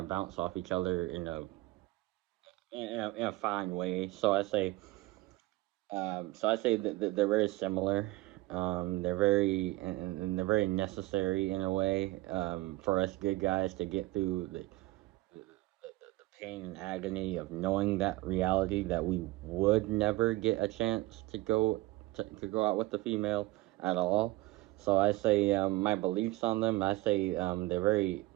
bounce off each other in a fine way. So I say that they're very similar. They're very and they're very necessary in a way for us good guys to get through the pain and agony of knowing that reality that we would never get a chance to go out with the female at all. So I say my beliefs on them. I say they're very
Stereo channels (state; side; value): quieter; left; 19.8 dB